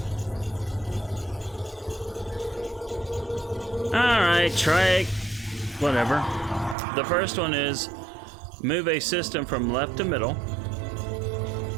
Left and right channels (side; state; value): left; drops out; at 6.8 s